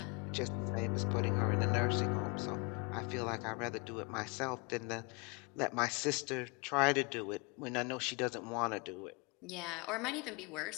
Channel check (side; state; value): right; quieter; 30.2 dB